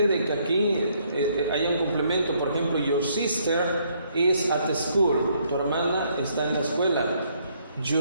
de que aquí haya un complemento. Por ejemplo, your sister is at the school, tu hermana está en la escuela.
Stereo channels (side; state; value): both; inverted; correlation -0.69